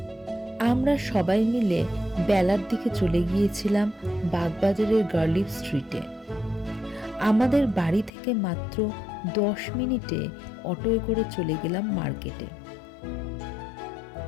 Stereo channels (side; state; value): right; drops out; at 8.1 s